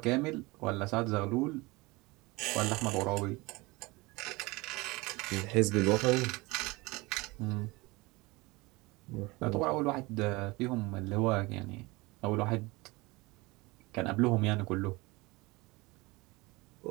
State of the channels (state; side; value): quieter; left; 23.4 dB